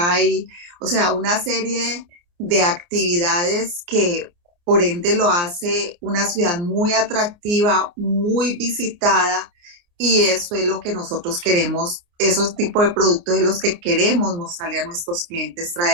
o sea, una serie de actividades que por ende lo hace una ciudad muy atractiva, muy visitada, y eso es lo que nosotros queremos, esos tipos de productos de los que queremos mostrarle a nuestros clientes,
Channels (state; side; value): late; left; 29 ms